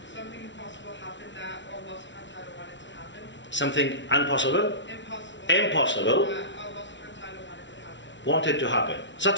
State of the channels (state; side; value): late; right; 0.53 ms